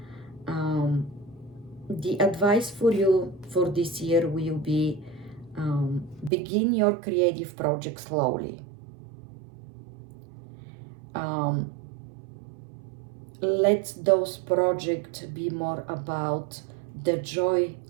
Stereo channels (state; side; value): drops out; left; at 6.3 s